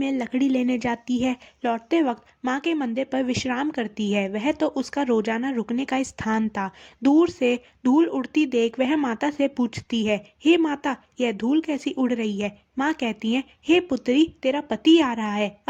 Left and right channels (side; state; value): both; identical; correlation 1.00